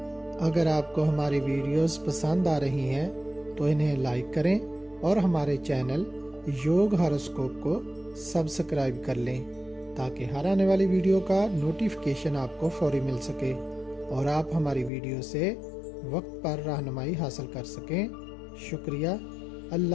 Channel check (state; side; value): drops out; right; at 14.9 s